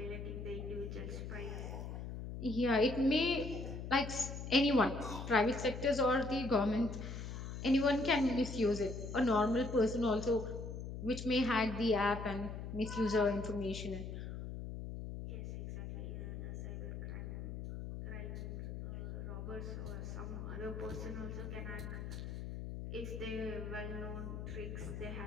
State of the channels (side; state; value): left; noise; hum, 7 dB below the sound